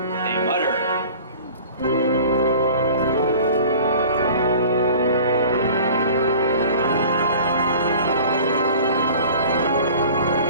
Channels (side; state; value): both; inverted; correlation -0.44